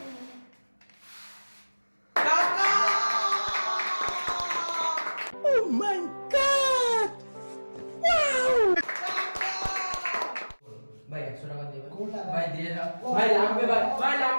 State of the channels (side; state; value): both; inverted; correlation -1.00